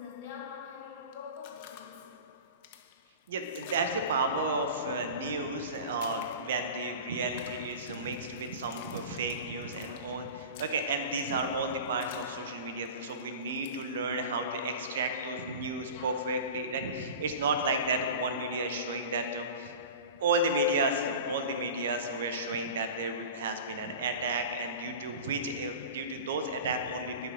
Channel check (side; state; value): both; inverted; correlation -0.34